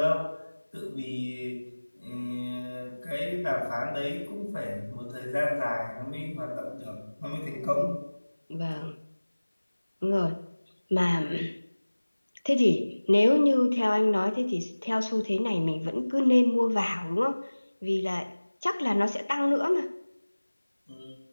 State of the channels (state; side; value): inverted; both; correlation -1.00